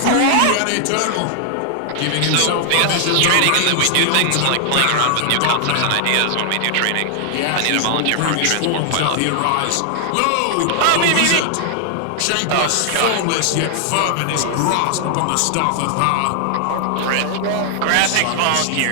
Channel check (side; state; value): both; different; correlation 0.00